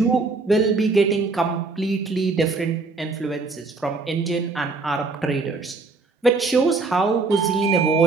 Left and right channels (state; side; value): quieter; left; 3.8 dB